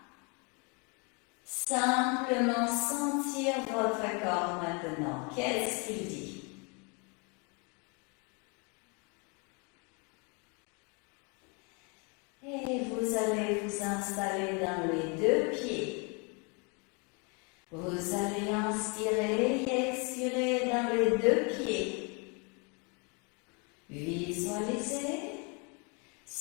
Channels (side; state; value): right; quieter; 33.2 dB